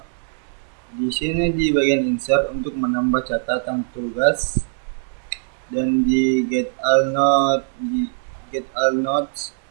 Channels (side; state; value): left; silent; digital silence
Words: Di sini di bagian insert untuk menambah catatan tugas, dan di get all notes